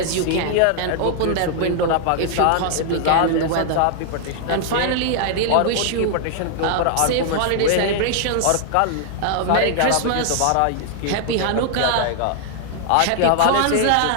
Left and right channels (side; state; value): both; different; correlation -0.01